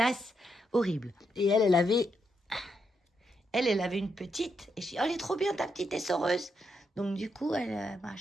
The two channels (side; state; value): both; normal; correlation 0.80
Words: horrible. Et elle avait... Elle avait une petite. Et je dis, oh, elle est trop bien, ta petite essoreuse. Donc, du coup, elle m'a